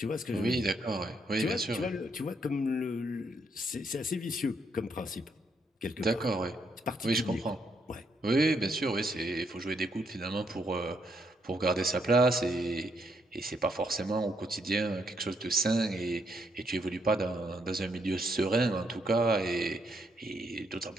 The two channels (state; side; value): normal; both; correlation 0.75